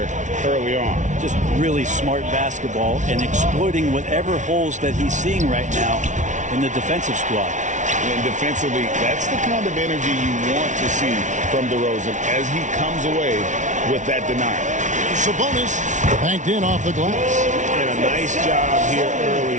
early on. Just really smart basketball and exploiting whatever holes that he's seeing right now in the defensive squad. And defensively, that's the kind of energy you want to see from DeRozan as he comes away with that denial. Sabonis banked in off the glass. And a nice job here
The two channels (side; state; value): left; late; 0.36 ms